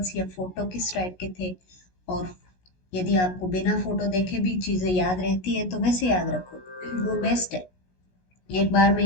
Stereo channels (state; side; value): late; right; 16 ms